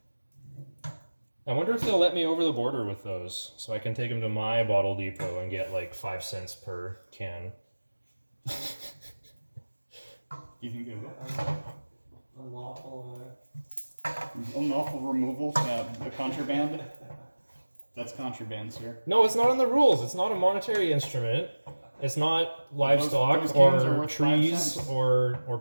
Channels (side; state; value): both; inverted; correlation -1.00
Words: I wonder if they'll let me over the border with those, so I can take them to my bottle depot and get like 5 cents per can. You think they will? Unlawful. Unlawful removal, the contraband. That's contraband, sir. No, it's not in the rules. It's not a monetary instrument. It's not livestock those cans are or worth 5 trees cents. or